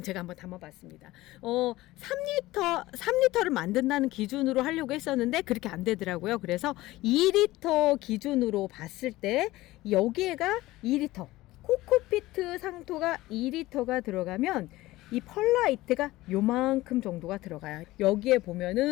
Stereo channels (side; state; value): right; quieter; 17.9 dB